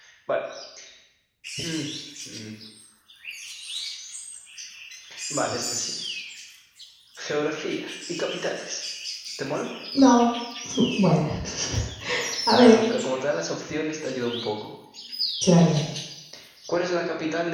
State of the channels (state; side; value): identical; both; correlation 1.00